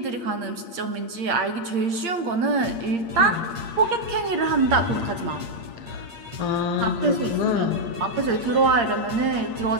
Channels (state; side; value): late; left; 8.6 ms